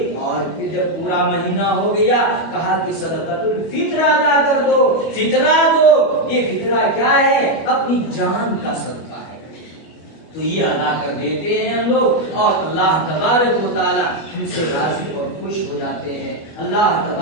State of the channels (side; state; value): right; late; 25 ms